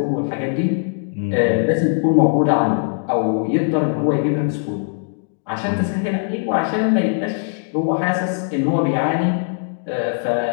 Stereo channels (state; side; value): silent; right; 66 dB below the other